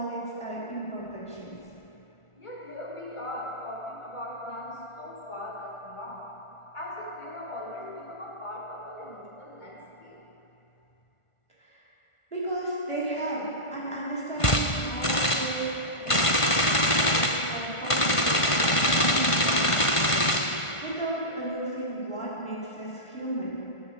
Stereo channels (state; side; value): late; right; 1.5 ms